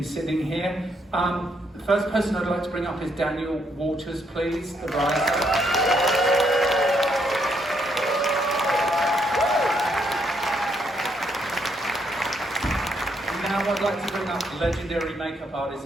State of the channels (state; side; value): normal; both; correlation 0.74